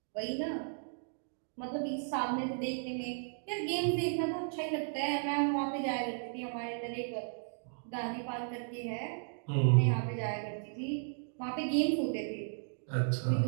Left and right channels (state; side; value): silent; left; digital silence